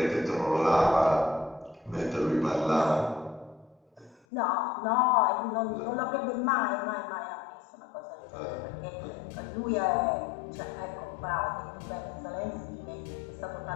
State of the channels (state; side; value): drops out; right; at 4.2 s